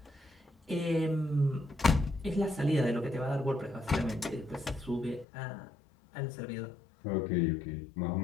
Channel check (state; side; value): drops out; right; at 5.2 s